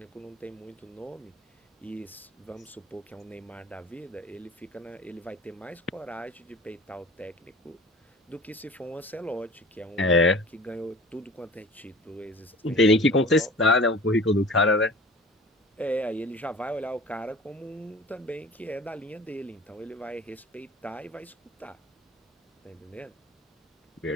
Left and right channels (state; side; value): normal; both; correlation 0.43